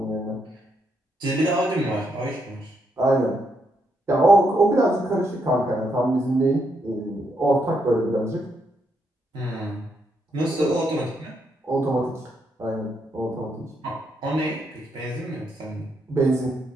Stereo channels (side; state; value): both; normal; correlation 0.78